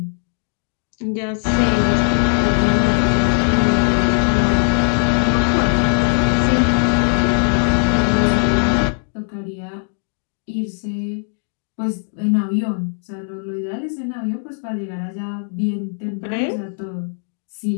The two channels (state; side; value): silent; right; digital silence